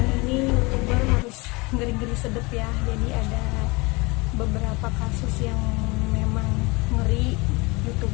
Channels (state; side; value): quieter; right; 25.8 dB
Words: ini YouTuber harus ngeri-ngeri sedep ya, jadi ada beberapa kasus yang memang ngeri.